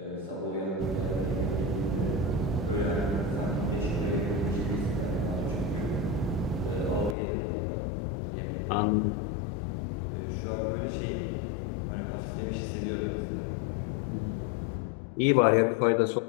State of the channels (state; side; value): drops out; right; at 7.2 s